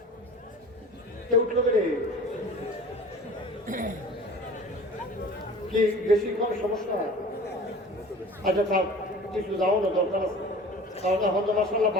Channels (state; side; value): normal; both; correlation 0.42